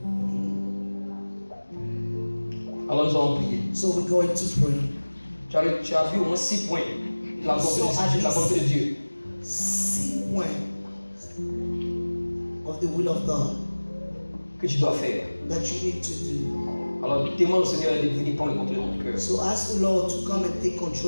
Alors nous allons prier. So we're going to pray. Tu as vu au moins 6 points de la volonté de, la volonté de Dieu. 6 points of the will of God Que tu dois faire. that you need to do. Alors demande au Seigneur de venir prendre le contrôle de ton cœur So ask the Lord to come and take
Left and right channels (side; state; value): both; inverted; correlation -1.00